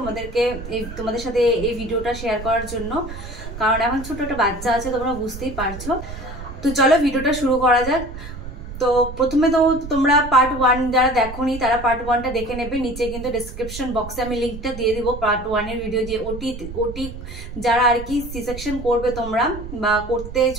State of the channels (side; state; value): right; noise; rumble, 11 dB below the sound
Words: তোমাদের সাথে এই ভিডিওটা শেয়ার করার জন্য, কারণ এখন ছোট একটা বাচ্চা আছে, তোমরা বুঝতেই পারছো। তো চলো ভিডিওটা শুরু করা যাক। তো প্রথমে তো তোমরা পার্ট 1 যারা দেখোনি তারা পার্ট 1টা দেখে নেবে। নিচে কিন্তু ডেসক্রিপশন বক্সে আমি লিঙ্কটা দিয়ে দিব পার্ট 1 এর ভিডিও, যে ওটি যারা আর কি সি সেকশন করবে তোমরা বা করতে